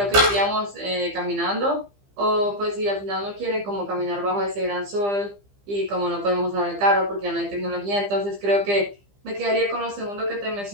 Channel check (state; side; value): late; left; 15 ms